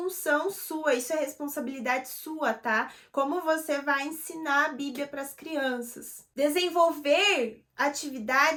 sua, isso é responsabilidade sua, tá? Como você vai ensinar a Bíblia para as crianças. Desenvolver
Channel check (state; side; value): identical; both; correlation 1.00